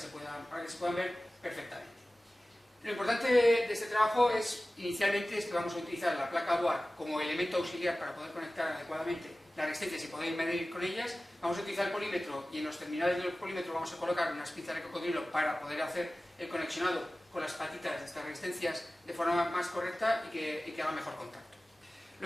puedan ver perfectamente. Lo importante de este trabajo inicialmente es que vamos a utilizar la placa Bohr como elemento auxiliar para poder conectar adecuadamente las resistencias y poder medir con ellas. Vamos a utilizar el polímetro y en los terminales del polímetro vamos a colocar unas pinzas de cocodrilo para poder hacer el conexionado con las patitas de estas resistencias de forma más correcta y que haga mejor contacto.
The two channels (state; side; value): normal; both; correlation 0.97